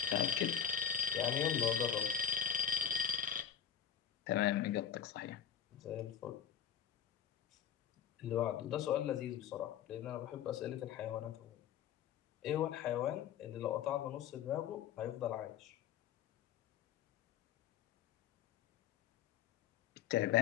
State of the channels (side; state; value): right; quieter; 8.6 dB